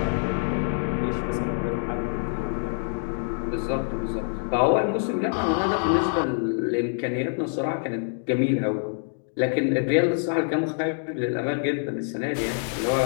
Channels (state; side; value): silent; right; digital silence